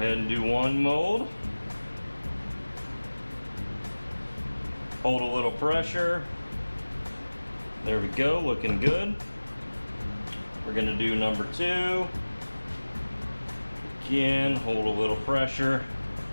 and do 1 mold. Hold a little pressure. There we go, looking good. We're gonna do number 2. Again, hold a little pressure.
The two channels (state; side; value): inverted; both; correlation -1.00